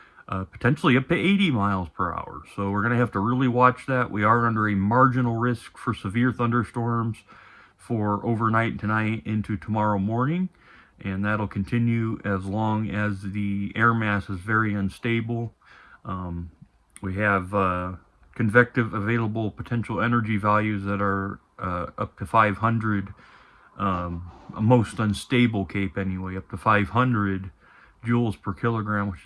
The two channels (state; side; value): identical; both; correlation 1.00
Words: potentially up to 80 miles per hour. So we're going to have to really watch that. We are under a marginal risk for severe thunderstorms for overnight tonight into tomorrow morning, and that'll continue as long as the air mass is very unstable. Um, we have convective available potential energy values that are up to 500, a most unstable cape anyway, up to 500 joules per kilogram, which